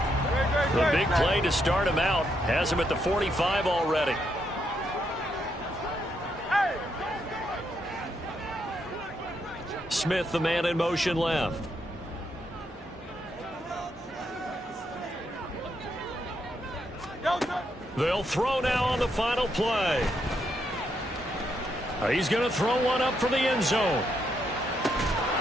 The big play to start him out has him at the 45 already. Smith, the man in motion left. They'll throw now on the final play. He's going to throw one up for the end zone.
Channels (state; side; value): normal; both; correlation 0.78